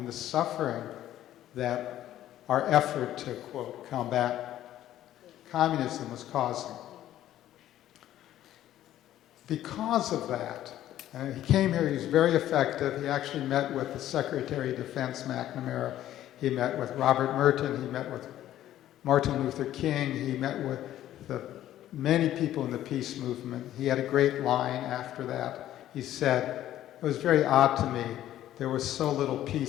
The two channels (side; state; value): right; quieter; 12.7 dB